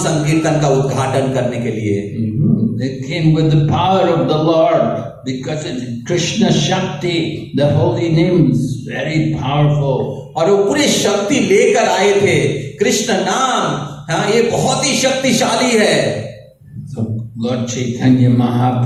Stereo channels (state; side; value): identical; both; correlation 1.00